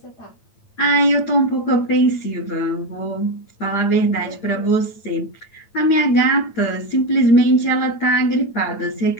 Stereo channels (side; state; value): right; late; 9.0 ms